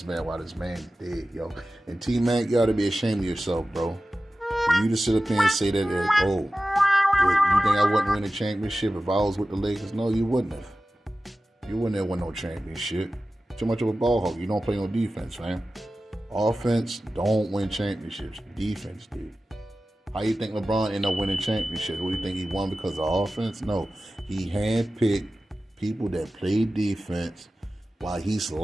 man while this man dead, yo. And T-Mac, you ought to be ashamed of yourself, bro. For you to sit up here and say that, oh, you think I wouldn't win a championship if I was with the Lakers? No, you wouldn't have. You wouldn't have won no championship. Too much of a ball hog. You don't play no defense, fam. Offense don't win championships. Defense did. How you think LeBron ended up winning championships? What do you think he won because of offense? No. He handpicked people that play defense while he's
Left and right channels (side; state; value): both; normal; correlation 0.95